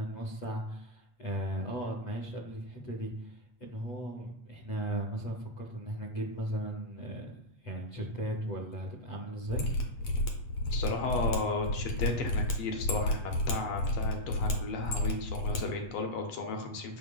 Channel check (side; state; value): right; late; 8.3 ms